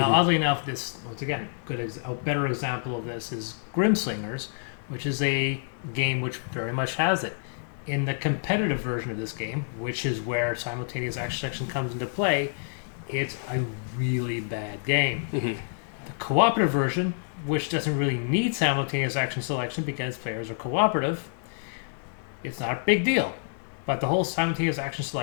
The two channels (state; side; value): silent; right; digital silence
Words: oddly enough, this, once again, a better example of this is Grimslingers, which is a game which very much has it. In the competitive version of this game, which is where simultaneous action selection comes into play, it's a really bad game. Mm-hmm. The cooperative version, which doesn't really need simultaneous action selection because players are cooperative, it's not a big deal. But the whole simultaneous action